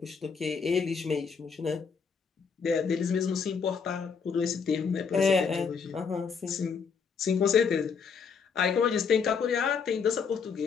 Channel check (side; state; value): right; quieter; 5.9 dB